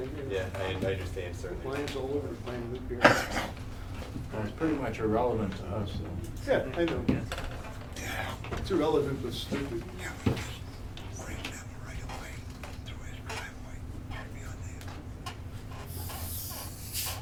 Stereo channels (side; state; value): both; identical; correlation 1.00